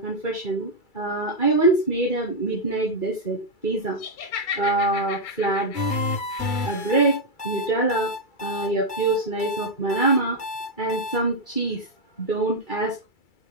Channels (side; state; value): right; late; 2.3 ms